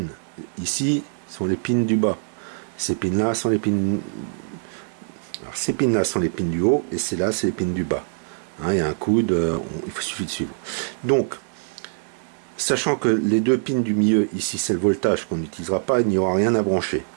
ici sont les pins du bas. Ces pins-là sont les pins. Alors, ces pins-là sont les pins du haut et ces-là, c'est les pins du bas. Hein, il y a un coude, il suffit de suivre. Donc, sachant que les deux pins du milieu, ici, c'est le voltage qu'on n'utilisera pas, il n'y aura rien à brancher.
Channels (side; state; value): left; silent; digital silence